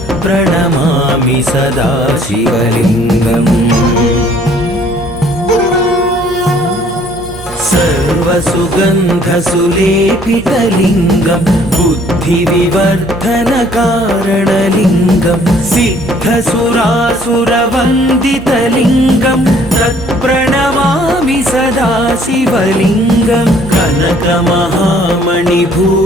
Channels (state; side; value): normal; both; correlation 0.59